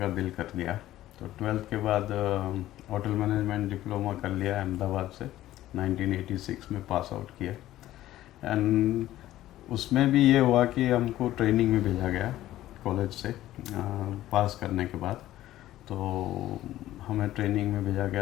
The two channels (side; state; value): right; quieter; 14.4 dB